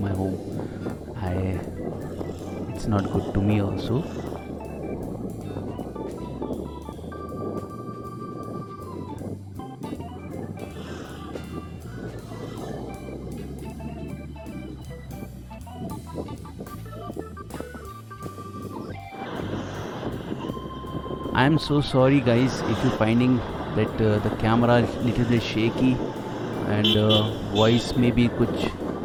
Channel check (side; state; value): both; identical; correlation 1.00